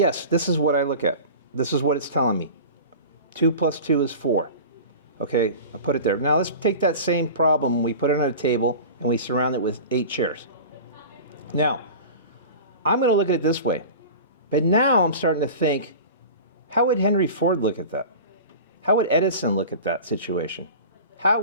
this is what I look at. This is what it's telling me. 2 + 2 is 4. Okay, I put it there. Now let's take that same problem, we put it on a table, and we surround it with 8 chairs. Now, I'm going to look at it this way. But now I'm starting to think, how would Henry Ford look at that? How would Edison look at that situation? How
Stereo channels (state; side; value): inverted; both; correlation -0.35